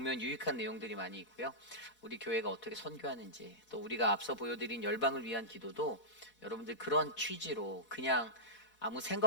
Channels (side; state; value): right; late; 4.1 ms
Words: 유익한 내용들이 많이 있고요. 우리 교회가 어떻게 선교하는지, 또 우리가 앞서 보여드린 열방을 위한 기도도 여러분들 그런 취지로 그냥 아무